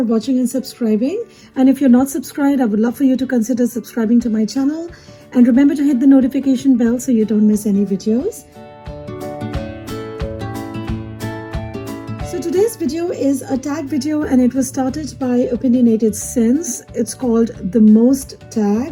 watching and subscribing. And if you're not subscribed, I would love for you to consider subscribing to my channel. And remember to hit the notification bell so you don't miss any videos. So today's video is a tag video and it was started by Opinionated Sense. It's called The Most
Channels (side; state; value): both; identical; correlation 1.00